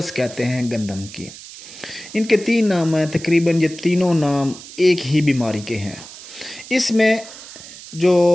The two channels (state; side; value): noise; right; hiss, 16 dB below the sound